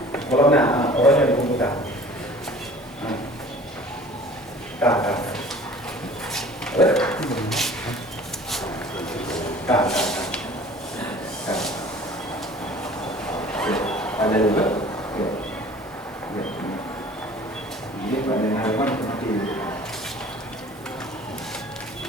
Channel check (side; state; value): both; normal; correlation 0.47